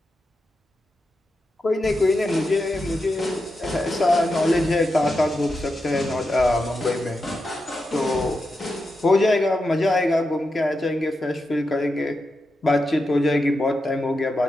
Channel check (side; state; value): both; normal; correlation 0.88